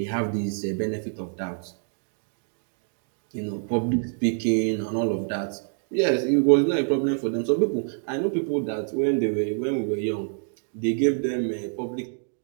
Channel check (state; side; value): silent; left; digital silence